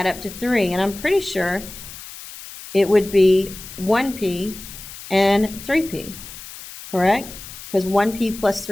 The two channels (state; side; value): noise; left; hiss, 14 dB below the sound